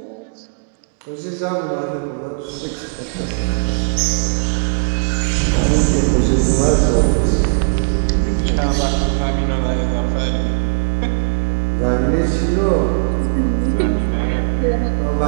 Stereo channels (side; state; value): left; silent; digital silence